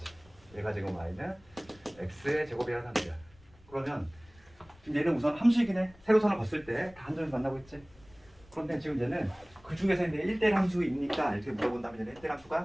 얘가 지금 y는 x의 제곱이라는 함수야. 그러면 지금 얘는 우선 함수이긴 해. 세로선을 봤을 때 다 한 점에서 만나고 있지. 그런데 지금 얘는 그 중에서 이제 1대1 함수입니까? 이렇게 물어본다면 얘는 1대1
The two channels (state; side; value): noise; left; rumble, 26 dB below the sound